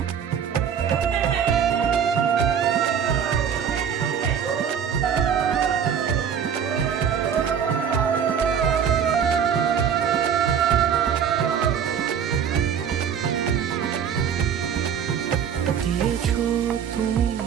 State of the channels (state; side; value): quieter; left; 7.9 dB